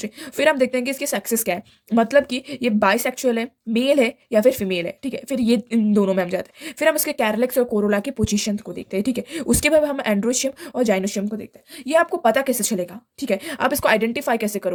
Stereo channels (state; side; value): identical; both; correlation 1.00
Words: फिर हम देखते हैं कि इसकी सेक्सेस क्या है, मतलब कि ये बाइसेक्सुअल है, मेल है या फिर फीमेल है। ठीक है, फिर ये इन दोनों में हम जाते हैं। फिर हम इसके कैरलेक्स और कोरोला की पोजीशन को देखते हैं। ठीक है, उसके बाद हम एंड्रोशियम और जाइनोशियम को देखते हैं। ये आपको पता कैसे चलेगा, ठीक है, आप इसको आइडेंटिफाई कैसे